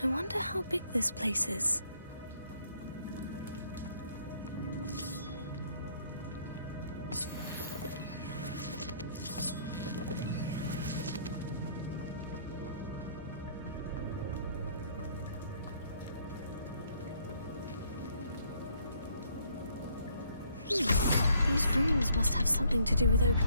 I wonder how big this place is. These runes must have something to do with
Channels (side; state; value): both; inverted; correlation -0.65